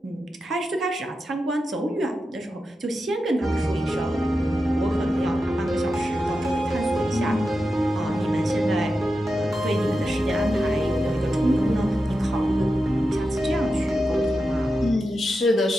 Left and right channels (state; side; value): normal; both; correlation 0.90